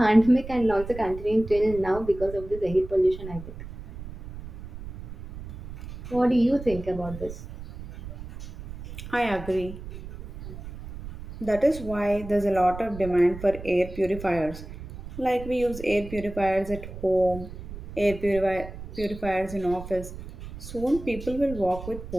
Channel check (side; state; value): right; noise; rumble, 12 dB below the sound